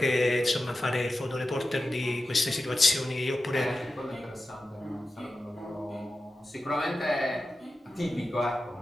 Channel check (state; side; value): normal; both; correlation 0.93